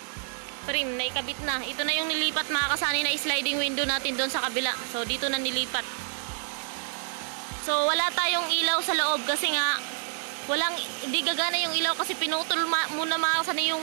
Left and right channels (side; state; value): left; silent; 59 dB below the other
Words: frame na ikabit na. Ito na yung nilipat mga kasani na sliding window natin doon sa kabila. So dito na nilipat. So wala tayong ilaw sa loob kasi nga hindi gagana yung ilaw kasi pinutol muna mga kasani